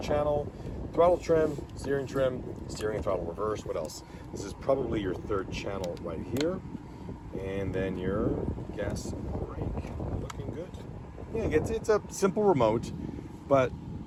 channel, throttle trim, steering and throttle reverse. What else? This is probably your third channel right here. And then your gas brake. Looking good. Yeah, it's a simple remote, but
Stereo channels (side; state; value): both; identical; correlation 1.00